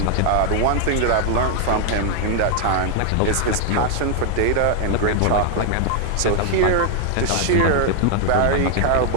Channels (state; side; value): different; both; correlation 0.00